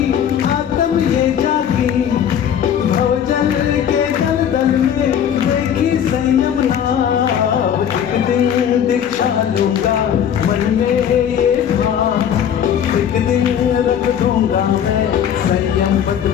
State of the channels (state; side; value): quieter; right; 9.0 dB